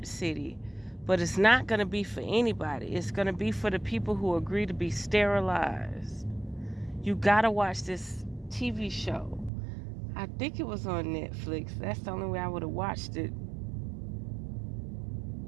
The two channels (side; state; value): left; drops out; at 9.5 s